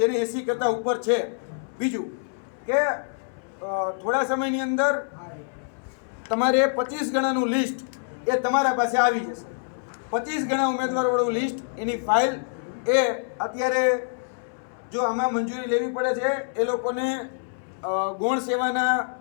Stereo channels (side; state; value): right; silent; 61 dB below the other